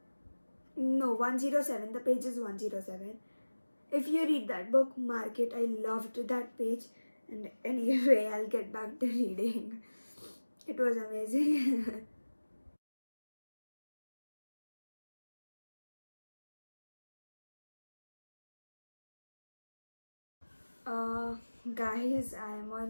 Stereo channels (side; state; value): both; inverted; correlation -1.00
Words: No, 107. The page is 107. If you read that book, mark it. I loved that page. And anyway, I'll get back to reading. It was amazing. uh, Guys, I'm